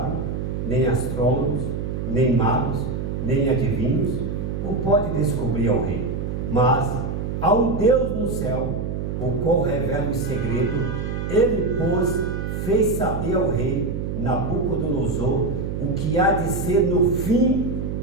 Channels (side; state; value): right; noise; hum, 3 dB below the sound